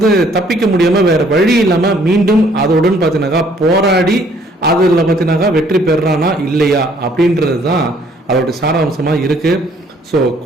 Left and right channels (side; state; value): both; normal; correlation 0.62